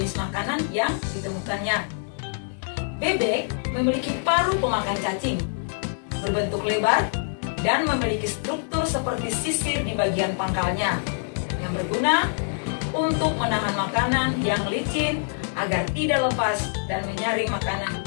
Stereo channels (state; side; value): silent; right; digital silence